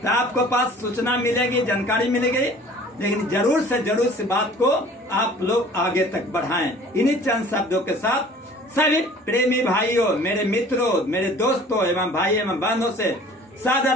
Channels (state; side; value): normal; both; correlation 0.49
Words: आपको पास सूचना मिलेगी, जानकारी मिलेगी। लेकिन जरूर से जरूर इस बात को आप लोग आगे तक बढ़ाएं। इन्हीं चंद शब्दों के साथ सभी प्रेमी भाइयों, मेरे मित्रों, मेरे दोस्तों एवं भाई एवं बहनों से